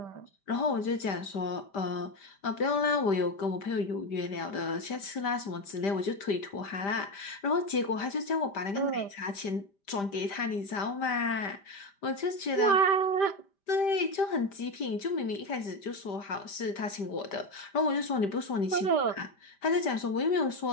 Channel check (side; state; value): right; late; 5.1 ms